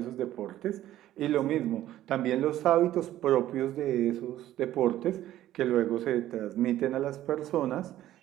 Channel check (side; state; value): left; quieter; 13.5 dB